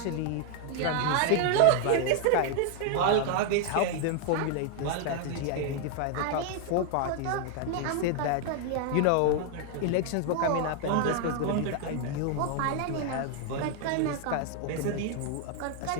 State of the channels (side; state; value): both; different; correlation 0.00